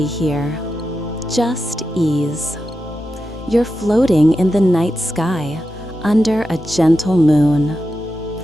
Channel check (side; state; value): both; normal; correlation 0.90